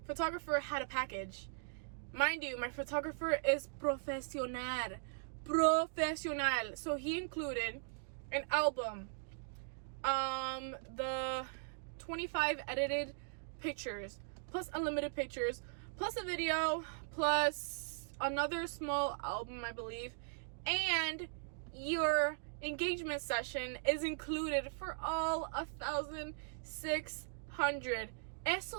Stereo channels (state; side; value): silent; left; digital silence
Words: photographer had a package. Mind you, my photographer is profesional. So he included an album, the 25 edited pictures, plus unlimited pictures, plus a video, plus another small album, I believe, and your engagement session is included for all 1,600. Eso